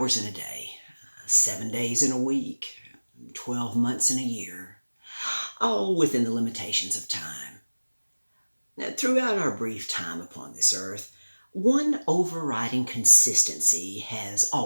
in a day, 7 days in a week, 12 months in a year, all within the limitations of time. Throughout our brief time upon this earth, one overriding consistency has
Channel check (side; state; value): both; inverted; correlation -1.00